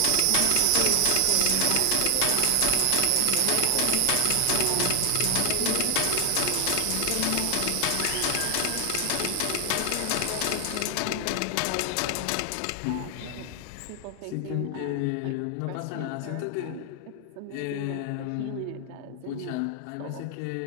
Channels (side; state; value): both; different; correlation 0.00